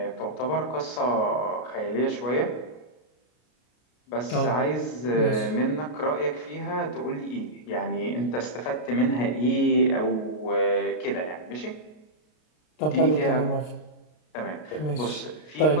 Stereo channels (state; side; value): late; right; 33 ms